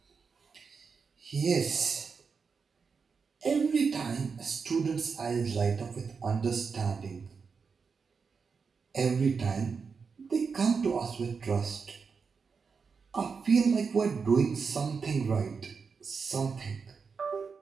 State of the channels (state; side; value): quieter; left; 5.4 dB